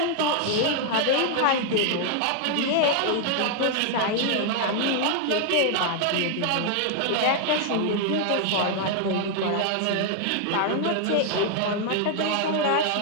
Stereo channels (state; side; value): different; both; correlation 0.00